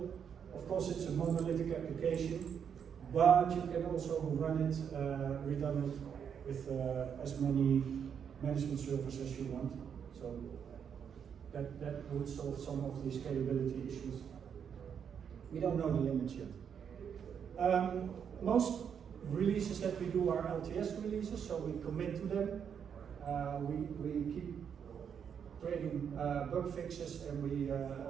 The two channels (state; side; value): quieter; left; 7.6 dB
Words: Of course, it's a monolithic application, but you can also run it redundant with as many management servers as you want. So that would solve some of the scalability issues. We don't know the limits yet. Most releases that we do are LTS releases, so we commit to them. We keep creating bug fixes, and we